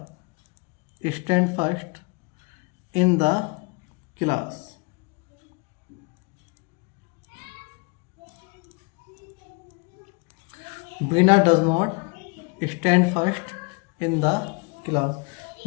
stand first in the class. Bina does not stand first in the class.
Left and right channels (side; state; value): right; quieter; 30.3 dB